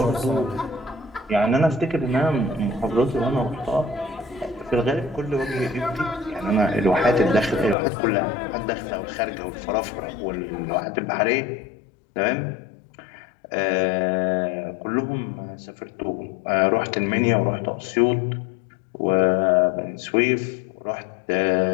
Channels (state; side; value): drops out; right; at 7.8 s